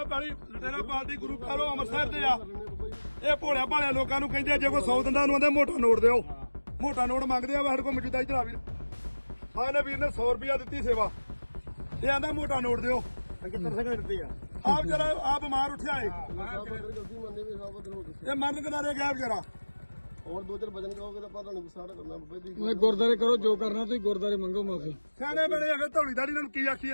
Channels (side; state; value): both; inverted; correlation -1.00